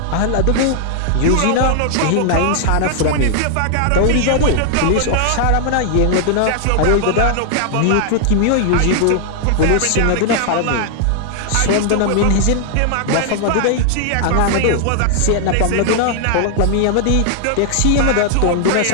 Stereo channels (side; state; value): both; different; correlation 0.00